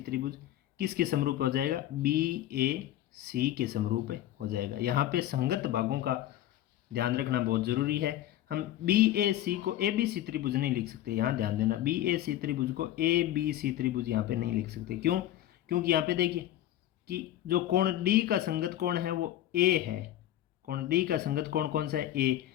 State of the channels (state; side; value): quieter; right; 13.0 dB